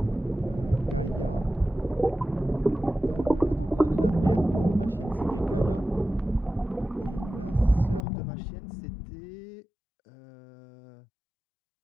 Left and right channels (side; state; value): right; drops out; at 8.0 s